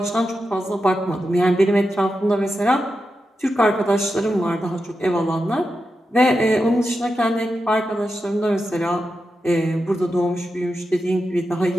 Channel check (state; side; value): normal; both; correlation 0.89